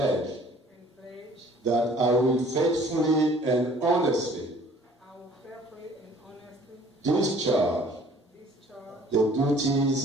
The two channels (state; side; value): normal; both; correlation 0.53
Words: and pledge that I will faithfully and honestly I will faithfully and honestly discharge discharge the